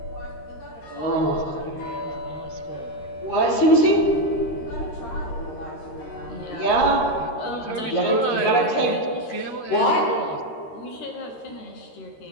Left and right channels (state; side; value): late; right; 13 ms